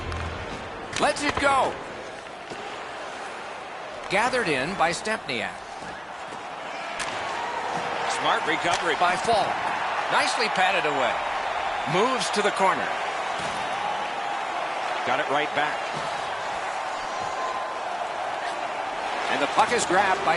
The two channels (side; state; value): both; identical; correlation 1.00